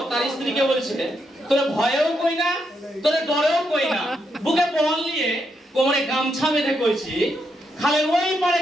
তার স্ত্রীকে বলছে, তোরে ভয়েও কই না তোরে ডরেও কই না, বুকে বল নিয়ে কোমরে গামছা বেঁধে কইছি, খালের ওই পারে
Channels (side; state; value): both; normal; correlation 0.80